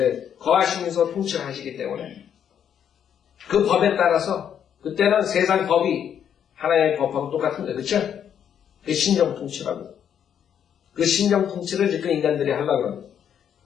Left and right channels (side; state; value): right; quieter; 8.8 dB